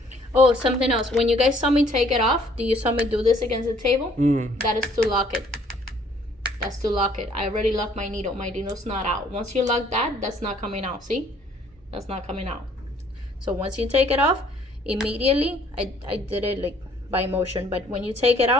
Oh, something else. When you guys saw me take it off, do you saw me do this against the table? That is to lock it. That's to lock it. I already locked my needle. My needle's not out. Once you lock that, that's not coming out. See? That's not coming out. So once you take it off, immediately, I did it like by motion, but when you take it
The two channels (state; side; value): normal; both; correlation 0.60